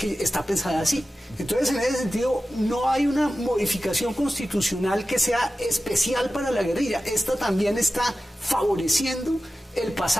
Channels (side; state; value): both; normal; correlation 0.94